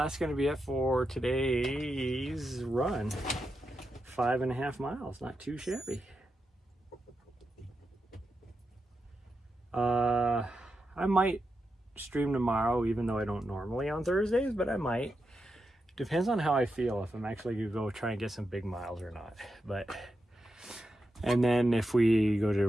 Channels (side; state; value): both; normal; correlation 0.87